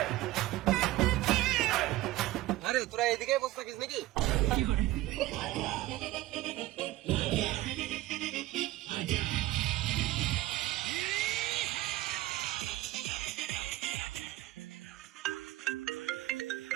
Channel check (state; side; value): quieter; left; 16.7 dB